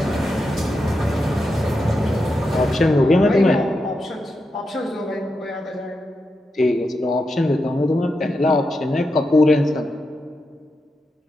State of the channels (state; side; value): normal; both; correlation 0.87